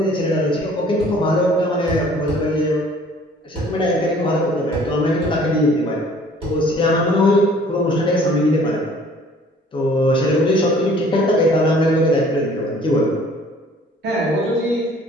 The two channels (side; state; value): both; normal; correlation 0.54